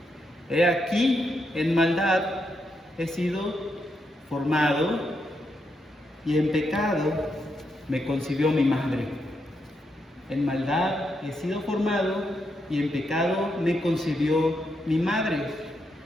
He aquí, en maldad he sido formado, y en pecado me concibió mi madre. En maldad he sido formado, y en pecado me concibió mi madre.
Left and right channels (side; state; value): both; normal; correlation 0.81